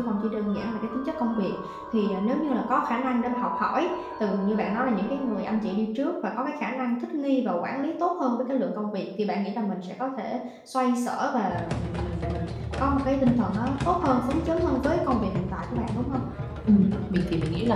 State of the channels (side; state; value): both; identical; correlation 1.00